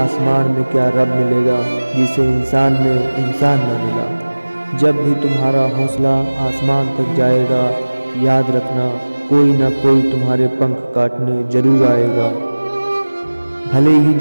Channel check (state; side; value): inverted; both; correlation -1.00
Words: में क्या रब मिलेगा, जिसे इंसान में इंसान न मिला। जब भी तुम्हारा हौसला आसमान तक जाएगा, याद रखना कोई ना कोई तुम्हारे पंख काटने जरूर आएगा। भले ही